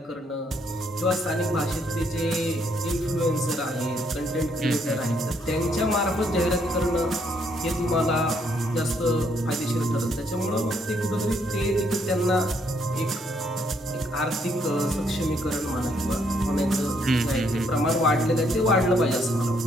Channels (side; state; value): both; normal; correlation 0.71